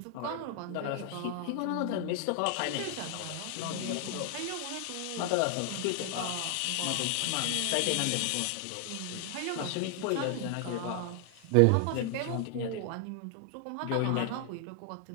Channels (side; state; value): both; different; correlation 0.00